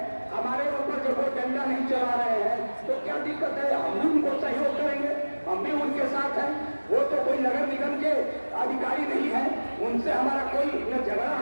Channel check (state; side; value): inverted; both; correlation -1.00